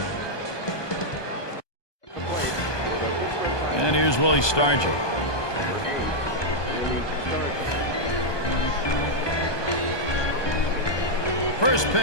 And here's Willie Stargell. First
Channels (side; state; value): right; late; 1.2 ms